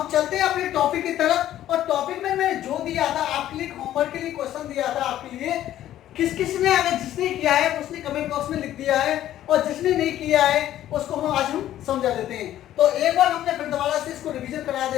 चलते हैं अपने टॉपिक की तरफ। और टॉपिक में मैंने जो दिया था आपके लिए, होमवर्क के लिए क्वेश्चन दिया था आपके लिए, किस किस ने, अगर जिसने किया है उसने कमेंट बॉक्स में लिख दिया है, और जिसने नहीं किया है उसको आज हम समझा देते हैं। तो एक बार हमने फिर दोबारा से इसको रिवीजन करा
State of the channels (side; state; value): right; quieter; 12.6 dB